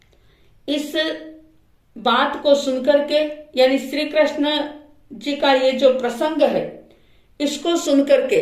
इस बात को सुनकर के, यानी श्री कृष्ण जी का ये जो प्रसंग है, इसको सुनकर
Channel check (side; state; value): both; identical; correlation 1.00